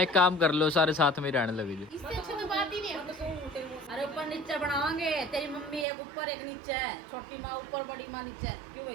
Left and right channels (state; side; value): drops out; left; at 5.9 s